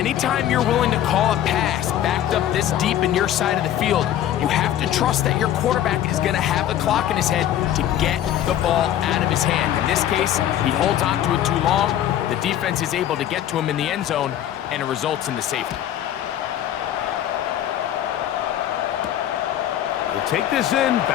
you're willing to call a pass backed up this deep in your side of the field, you have to trust that your quarterback is going to have the clock in his head to get the ball out of his hand. In this case, he holds on to it too long. The defense is able to get to him in the end zone, and it results in the safety. will take this in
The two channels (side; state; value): right; quieter; 11.4 dB